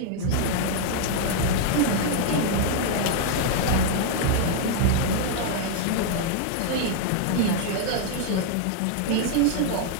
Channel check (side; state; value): both; different; correlation 0.00